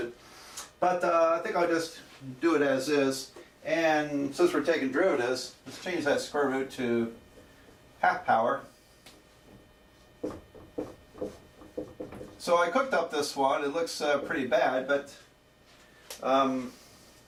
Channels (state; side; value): identical; both; correlation 1.00